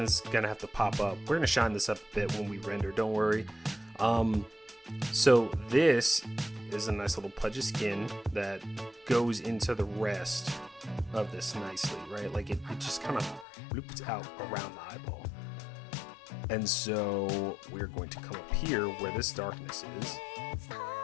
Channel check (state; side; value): drops out; right; at 13.5 s